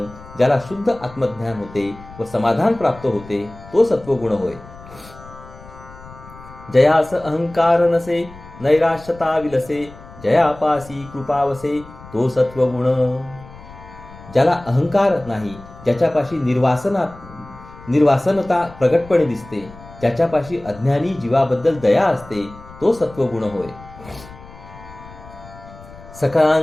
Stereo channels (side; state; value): left; noise; rumble, 19 dB below the sound